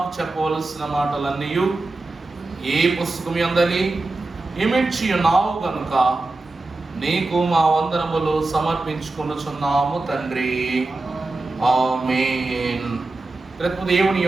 చెప్పవలసిన మాటలన్నీ ఈ పుస్తకం యందలి ఇమిడ్చి ఉన్నావు గనుక నీకు మా వందనములు సమర్పించుకొనుచున్నాము తండ్రి. ఆమేన్. రేపు దేవుని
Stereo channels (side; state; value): left; quieter; 3.2 dB